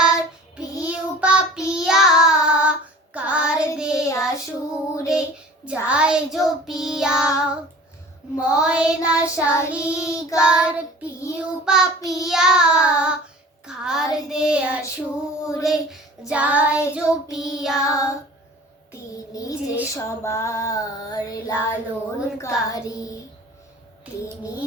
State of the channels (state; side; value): normal; both; correlation 0.44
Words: পিউ পাপিয়া, কার দেয়া সুরে যায় জপিয়া। ময়না শালিকার পিউ পাপিয়া, কার দেয়া সুরে যায় জপিয়া। তিনি যে সবার লালনকারী, তিনি